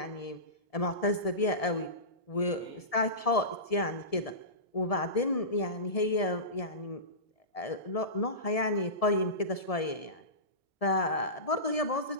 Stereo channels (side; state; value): right; late; 1.7 ms